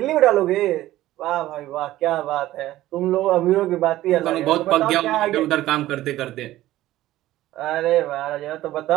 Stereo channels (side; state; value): left; quieter; 15.2 dB